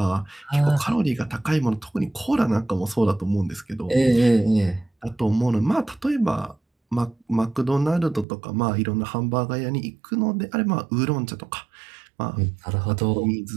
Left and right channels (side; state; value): left; drops out; at 8.2 s